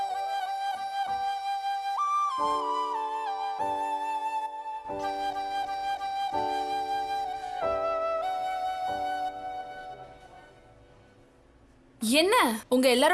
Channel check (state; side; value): identical; both; correlation 1.00